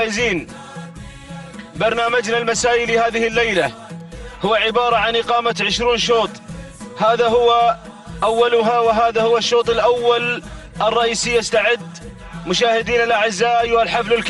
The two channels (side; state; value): both; identical; correlation 1.00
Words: برنامجنا المسائي لهذه الليلة هو عبارة عن إقامة 20 شوط، هذا هو أولها وهذا هو الشوط الأول الرئيسي. يستعد مشاهدينا الأعزاء أيها الحفل